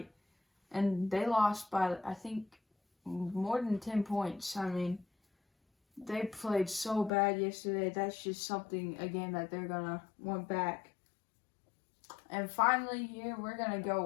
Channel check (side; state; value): right; drops out; at 7.1 s